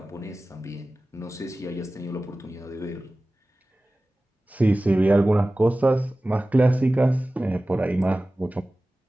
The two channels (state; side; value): normal; both; correlation 0.97